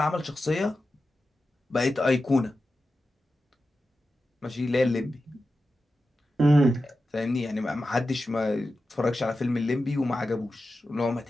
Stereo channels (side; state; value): both; normal; correlation 0.92